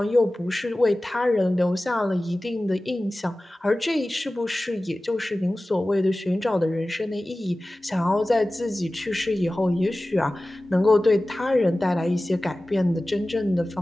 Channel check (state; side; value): normal; both; correlation 0.97